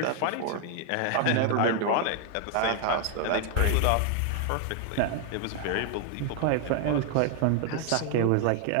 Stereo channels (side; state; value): both; different; correlation 0.00